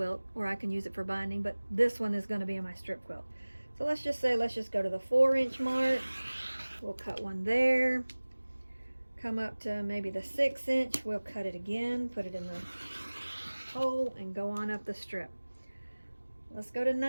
or I can use it for binding, but this one is going to be in my strip quilt. So let's just go to the 4 inch mark. We'll cut one there. Come up to maybe the 6 inch. We'll cut it again, put it in the hole, and go on up the strip. Let's go to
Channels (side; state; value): both; inverted; correlation -1.00